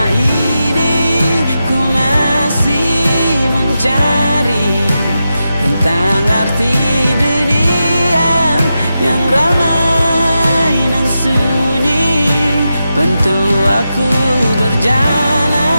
ini ku masih mencari tentang arti dunia yang ramai dan sunyi. aku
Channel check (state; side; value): inverted; both; correlation -0.89